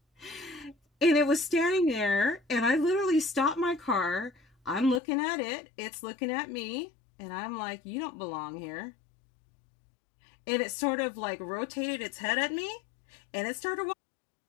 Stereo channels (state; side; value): drops out; right; at 5.0 s